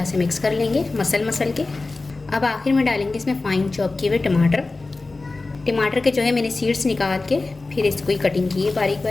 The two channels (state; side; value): quieter; right; 3.5 dB